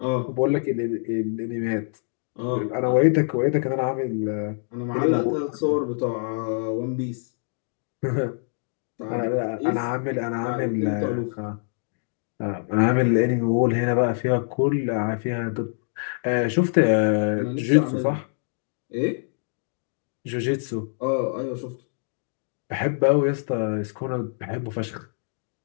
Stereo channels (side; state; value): right; silent; digital silence